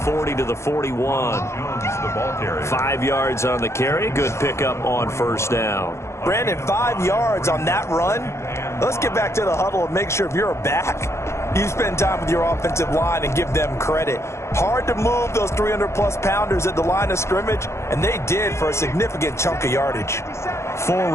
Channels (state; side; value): late; right; 0.13 ms